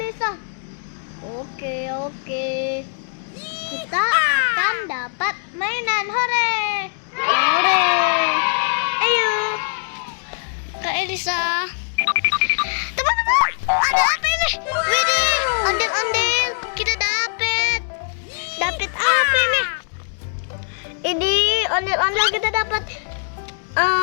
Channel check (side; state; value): right; silent; digital silence